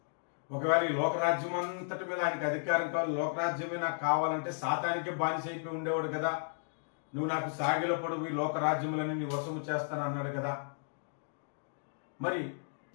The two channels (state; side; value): silent; right; digital silence